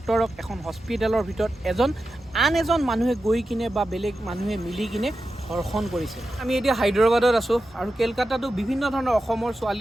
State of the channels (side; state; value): both; normal; correlation 0.91